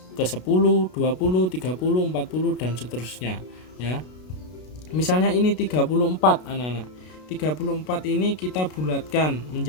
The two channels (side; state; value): right; late; 33 ms